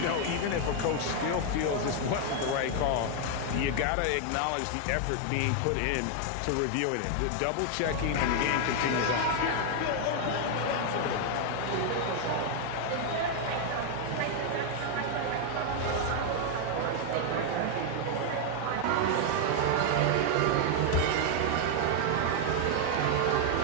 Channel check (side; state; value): both; different; correlation 0.00